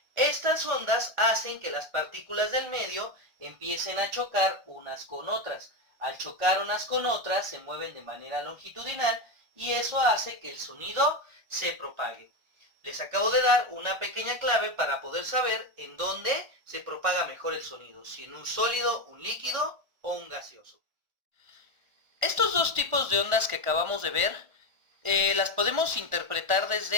estas ondas hacen que las partículas del medio empiecen a chocar unas con otras. Al chocar unas con otras se mueven de manera longitudinal y eso hace que el sonido se propague. Les acabo de dar una pequeña clave para poder saber en dónde se propaga mejor el sonido, si en un sólido, un líquido o un gaseoso. Estos dos tipos de ondas que acabamos de ver, las podemos interpretar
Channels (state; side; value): late; left; 1.4 ms